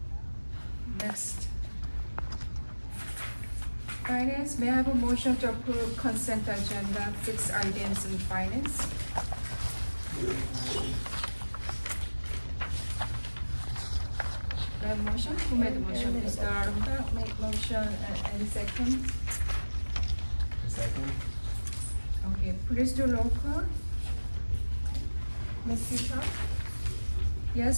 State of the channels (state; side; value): inverted; both; correlation -1.00